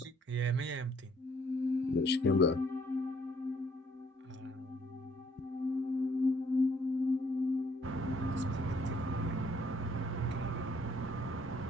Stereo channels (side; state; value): both; normal; correlation 0.65